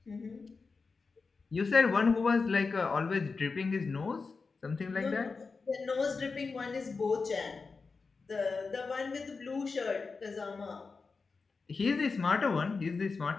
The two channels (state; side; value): quieter; right; 4.5 dB